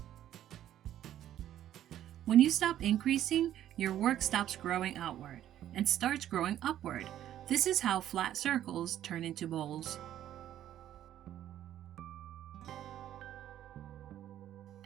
When you stop increasing, your work stops growing outward and starts growing upward. This is how flat circles turn into bowls.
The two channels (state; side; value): quieter; left; 11.8 dB